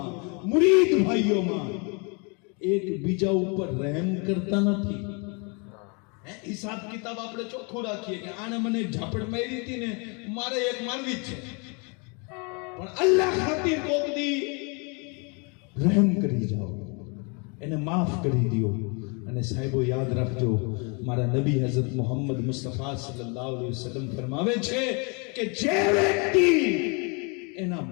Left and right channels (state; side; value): quieter; right; 33.3 dB